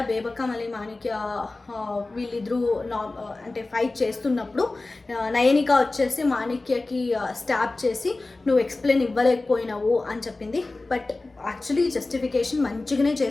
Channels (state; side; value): quieter; right; 3.2 dB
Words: బేబక్క మళ్ళీ మాణిక్య వీళ్ళిద్దరూ అంటే ఫైట్ చేస్తున్నప్పుడు నయనిక వచ్చేసి మాణిక్యకి స్టాప్ చేసి నువ్వు ఎక్స్ప్లెయిన్ ఇవ్వలేకపోయినావు అని చెప్పింది. బట్ యాక్చువల్లీ జస్టిఫికేషన్ మంచిగానే